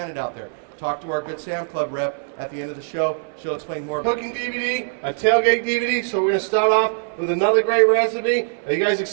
out there. Talk to our Good Sam Club rep at the end of the show. She'll explain more. Cooking DVD, a tailgate DVD. So we're going to start off with another great recipe. Are you guys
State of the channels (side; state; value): left; silent; 64 dB below the other